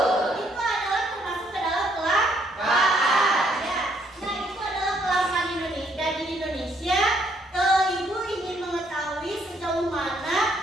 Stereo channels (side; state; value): both; normal; correlation 0.70